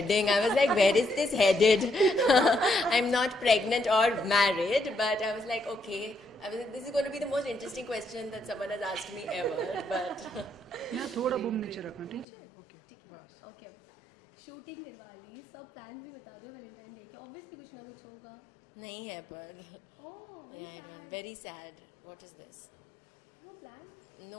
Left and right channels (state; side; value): drops out; right; at 12.2 s